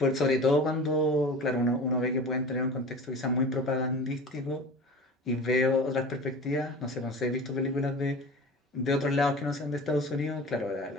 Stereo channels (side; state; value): both; normal; correlation 0.37